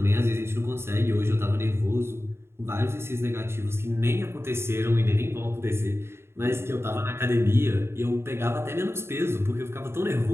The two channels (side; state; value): left; late; 0.12 ms